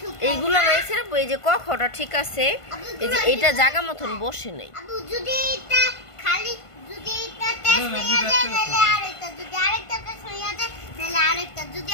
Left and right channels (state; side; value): late; right; 1.5 ms